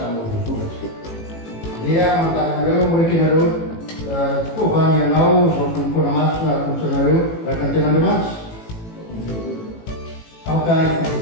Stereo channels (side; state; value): right; late; 18 ms